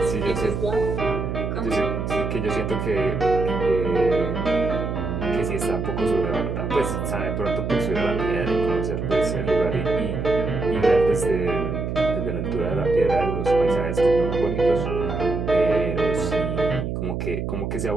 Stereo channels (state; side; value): noise; right; hum, 3 dB below the sound